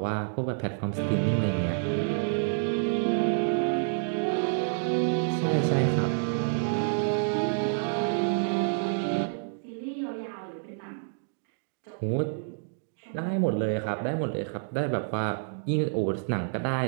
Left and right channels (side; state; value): left; silent; digital silence